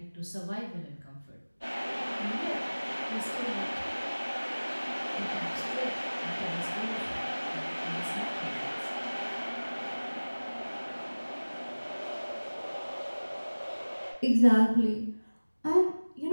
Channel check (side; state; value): both; inverted; correlation -1.00